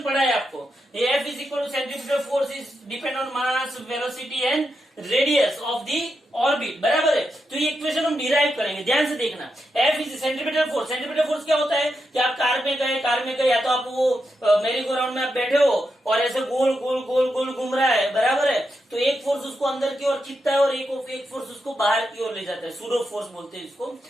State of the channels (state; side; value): normal; both; correlation 0.85